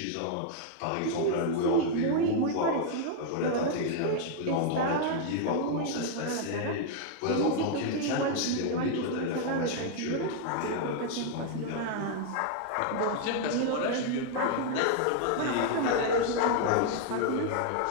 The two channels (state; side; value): different; both; correlation 0.00